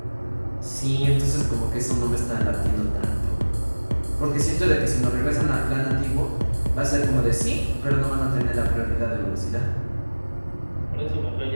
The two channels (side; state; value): both; inverted; correlation -1.00